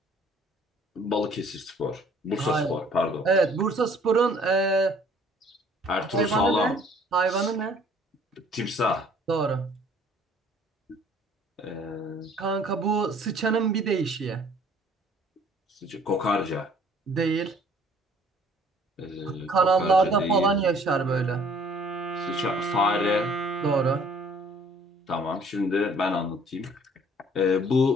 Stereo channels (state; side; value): normal; both; correlation 0.56